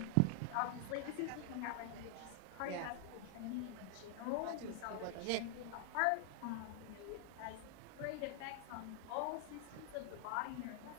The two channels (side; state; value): both; different; correlation 0.00